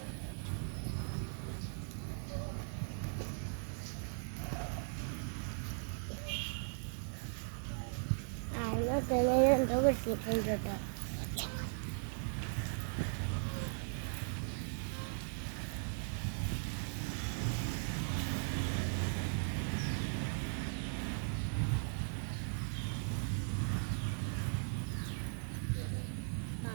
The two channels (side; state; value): left; silent; digital silence